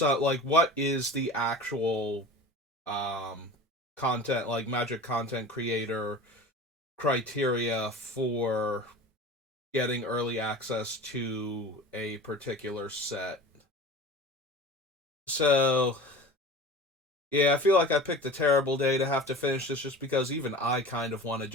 what is the actual um content, like magic content creator criteria for getting early access to a particular set. So, yeah, I feel like I picked a terrible day to have to finish this just because even I kind of want to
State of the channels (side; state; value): both; normal; correlation 0.36